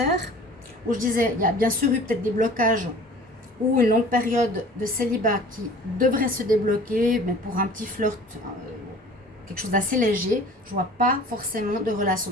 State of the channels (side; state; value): both; normal; correlation 0.46